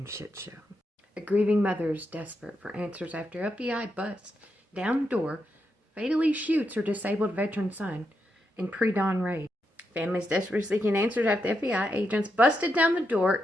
shit show. A grieving mother is desperate for answers after FBI busts down the door, fatally shoots her disabled veteran son in pre-dawn raid. Families desperately seeking answers after FBI agents busted down the door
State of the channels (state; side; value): normal; both; correlation 0.84